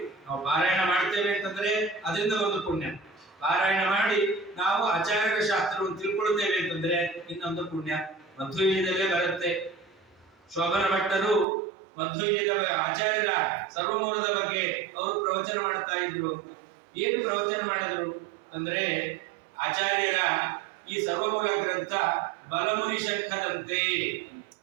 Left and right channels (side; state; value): left; drops out; at 11.5 s